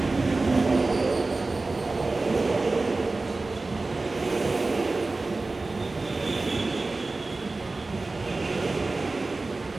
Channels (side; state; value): left; quieter; 3.4 dB